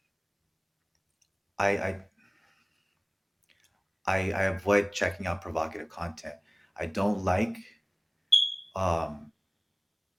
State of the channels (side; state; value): both; identical; correlation 1.00